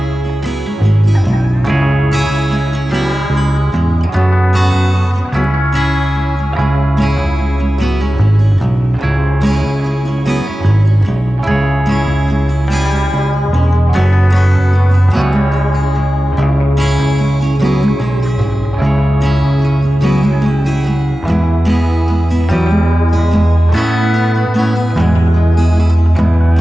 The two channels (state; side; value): normal; both; correlation 0.94